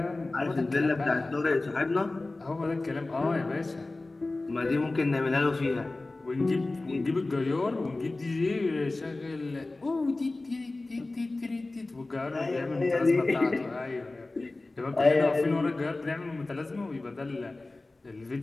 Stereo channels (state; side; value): quieter; right; 3.1 dB